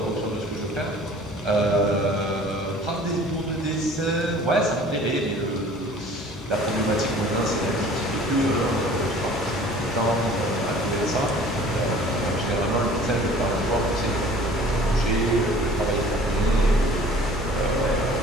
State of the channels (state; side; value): normal; both; correlation 0.49